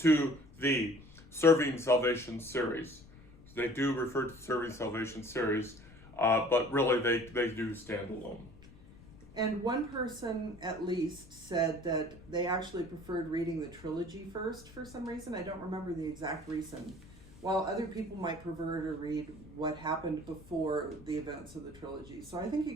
the Serving Salvation series. They do refer to the Serving Salvation series, but really they do stand alone. And one person at least said that they actually preferred reading the trilogy first for some reason. I don't remember the exact reason. While other people might prefer to read what happened before the events of the trilogy. So I think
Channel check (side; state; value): left; noise; rumble, 21 dB below the sound